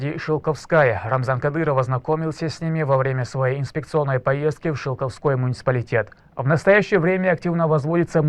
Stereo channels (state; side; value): identical; both; correlation 1.00